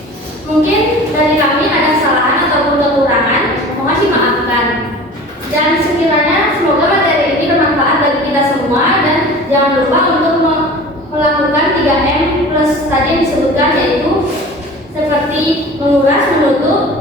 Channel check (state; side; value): normal; both; correlation 0.40